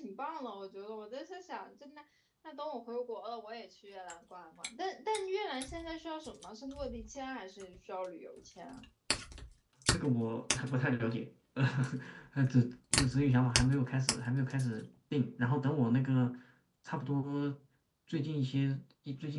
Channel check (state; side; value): identical; both; correlation 1.00